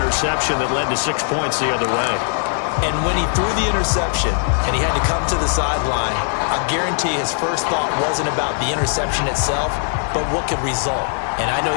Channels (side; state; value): right; silent; 62 dB below the other